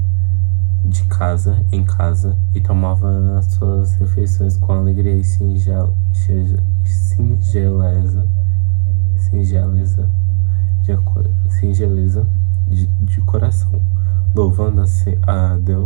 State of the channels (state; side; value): silent; left; digital silence